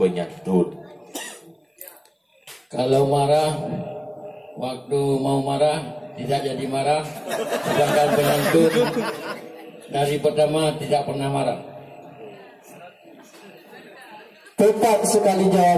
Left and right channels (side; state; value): both; identical; correlation 1.00